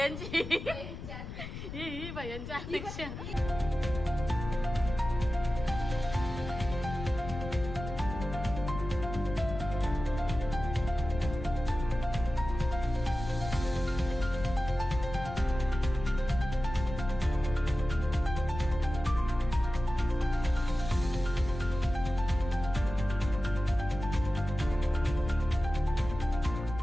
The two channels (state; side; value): noise; left; rumble, 9 dB below the sound